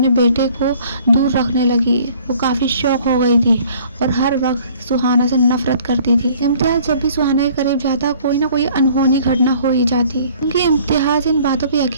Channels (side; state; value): both; inverted; correlation -0.54